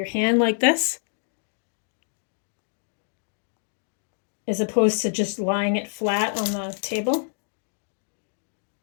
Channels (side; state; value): right; silent; digital silence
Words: hand like this, as opposed to just lying it flat on the table.